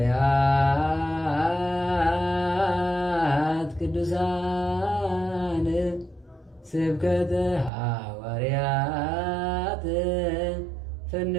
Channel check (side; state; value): left; drops out; at 7.7 s